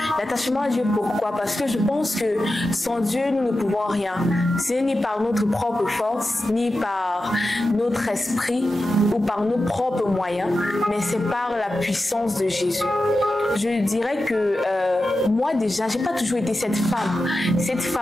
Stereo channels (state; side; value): normal; both; correlation 0.92